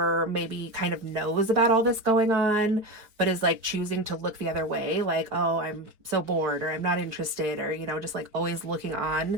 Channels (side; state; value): left; late; 4.6 ms